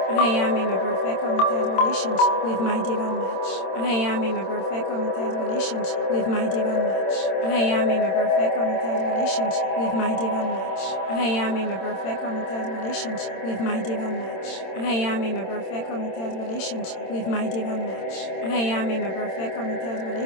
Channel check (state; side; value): late; right; 26 ms